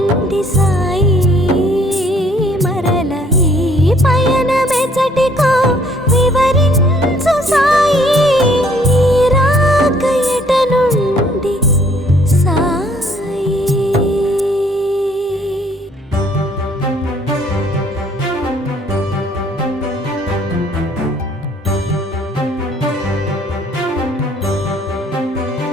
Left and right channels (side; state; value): both; normal; correlation 0.62